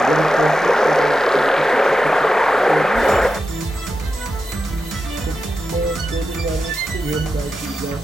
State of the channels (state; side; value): normal; both; correlation 0.90